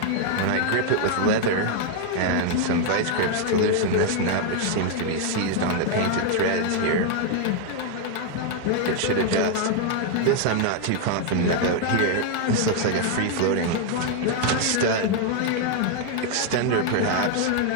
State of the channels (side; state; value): both; different; correlation 0.00